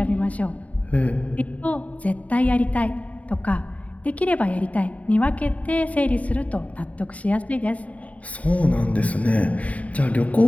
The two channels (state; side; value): late; right; 0.069 ms